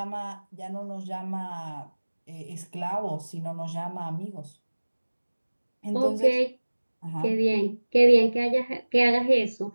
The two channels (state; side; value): inverted; both; correlation -1.00